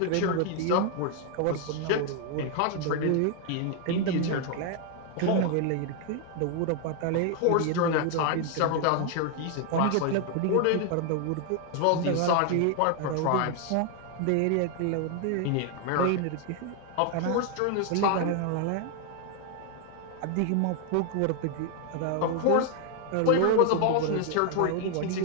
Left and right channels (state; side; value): different; both; correlation 0.00